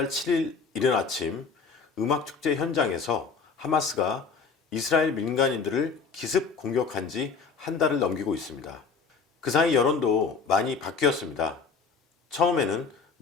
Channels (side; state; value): right; quieter; 5.2 dB